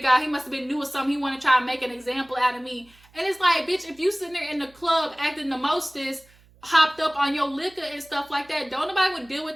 he must have been new or something. He want to try and make an example out of me. And it's like, bitch, if you sitting there in the club acting the mostest, hopped up on your liquor and stuff like that. Don't nobody would deal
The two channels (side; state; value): right; noise; hum, 29 dB below the sound